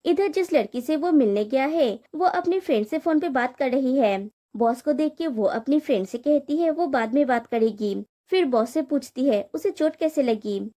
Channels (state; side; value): identical; both; correlation 1.00